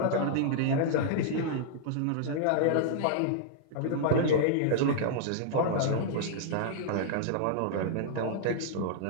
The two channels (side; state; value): both; different; correlation -0.01